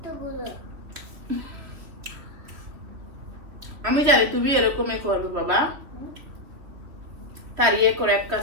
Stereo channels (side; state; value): left; late; 3.4 ms